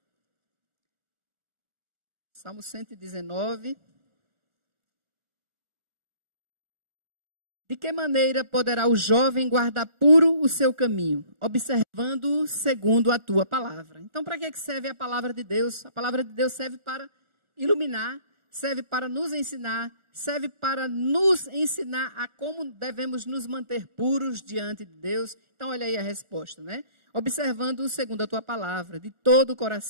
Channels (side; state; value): left; late; 1.4 ms